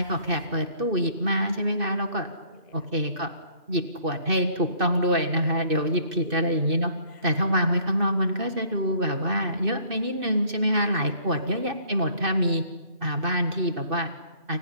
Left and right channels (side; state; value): left; late; 2.6 ms